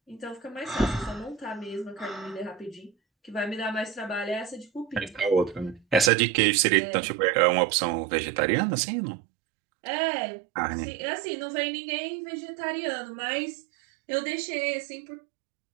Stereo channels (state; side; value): drops out; left; at 6.1 s